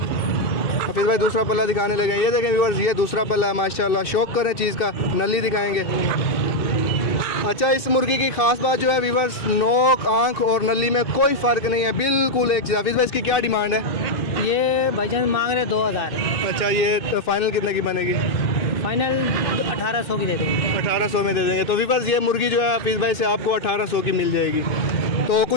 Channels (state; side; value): late; right; 2.6 ms